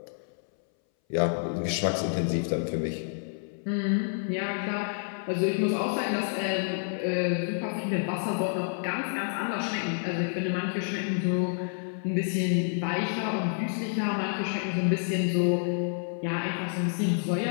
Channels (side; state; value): right; silent; 59 dB below the other